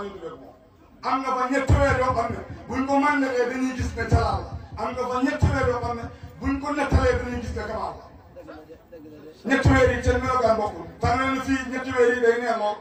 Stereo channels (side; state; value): both; identical; correlation 1.00